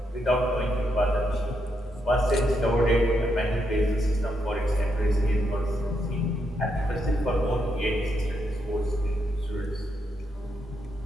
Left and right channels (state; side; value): normal; both; correlation 0.80